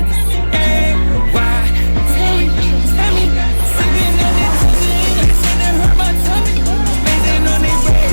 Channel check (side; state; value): both; inverted; correlation -1.00